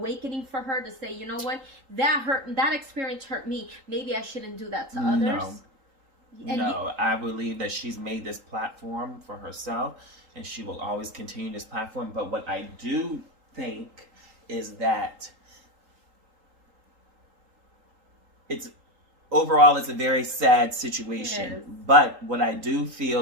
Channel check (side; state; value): left; late; 3.8 ms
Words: for her to say, you know what, that experience hurt me, maybe I shouldn't do that to others? No, I believe that she's made this platform for herself, and she will always continue this platform. But what I do think is that overall it's a very sad situation. But what I do